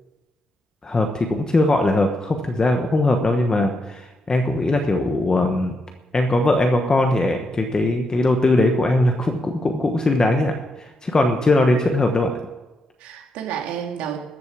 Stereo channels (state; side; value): normal; both; correlation 0.82